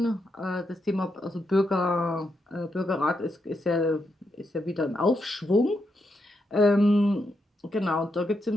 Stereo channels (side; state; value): both; normal; correlation 0.82